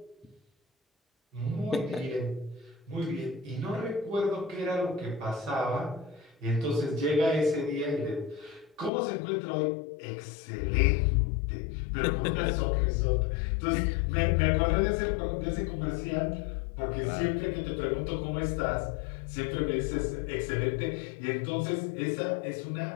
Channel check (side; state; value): right; drops out; at 8.9 s